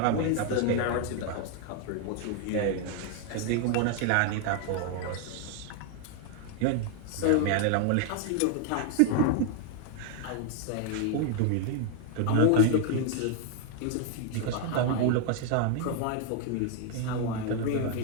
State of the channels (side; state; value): both; different; correlation 0.00